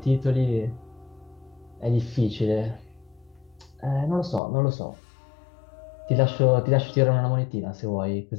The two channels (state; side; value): drops out; right; at 4.4 s